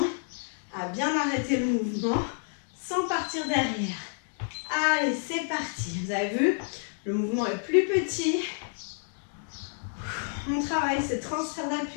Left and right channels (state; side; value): silent; right; 58 dB below the other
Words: à bien arrêter le mouvement sans partir derrière. Allez, c'est parti. Vous avez vu, le mouvement est plus petit. On travaille ce transfert